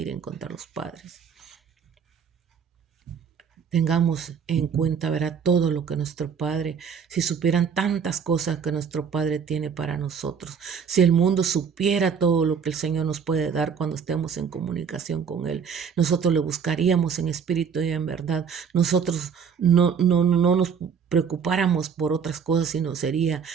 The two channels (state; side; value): quieter; left; 6.7 dB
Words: contra los padres. Tengamos en cuenta, verá, todo lo que nuestro Padre, si supieran tantas cosas que nuestro Padre tiene para nosotros, si el mundo supiera todo lo que el Señor nos puede dar cuando estemos en comunicación con Él, nosotros le buscaríamos en espíritu y en verdad. Nosotros no nos preocupáramos por otras cosas, sino sería